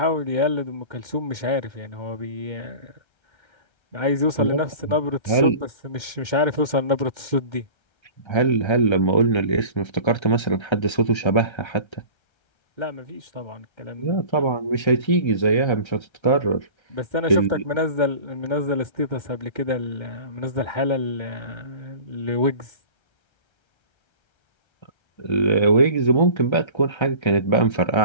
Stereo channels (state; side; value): late; right; 1.3 ms